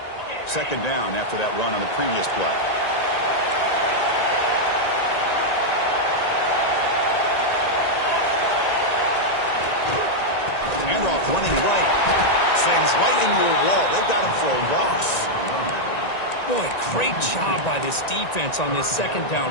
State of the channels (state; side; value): late; right; 1.9 ms